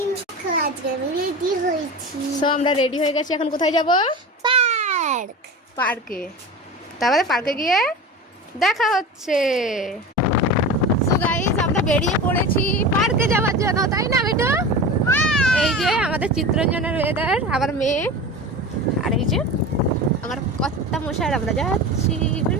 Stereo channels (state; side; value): normal; both; correlation 0.30